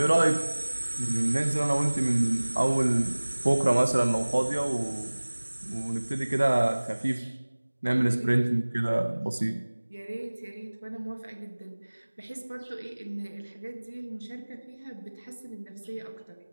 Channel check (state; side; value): inverted; both; correlation -1.00